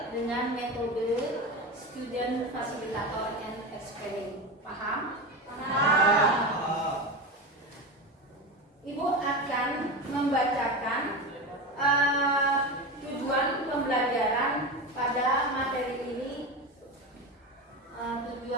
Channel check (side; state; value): both; normal; correlation 0.22